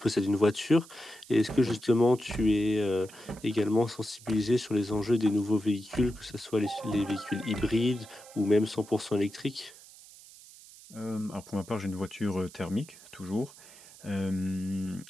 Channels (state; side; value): noise; right; hiss, 20 dB below the sound